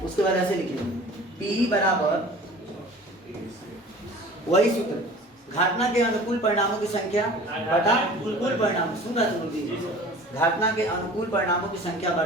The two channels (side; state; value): both; normal; correlation 0.43